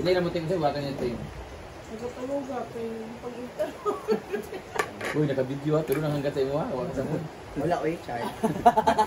na mo tingin sa'yo, wakan niya tayo. Nagkatulog ako yung pag-ita. Uy, naka-video ha, pero nanganggat sa iyo ha, wakan sa moon. Wala ko yung chart.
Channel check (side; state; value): both; identical; correlation 1.00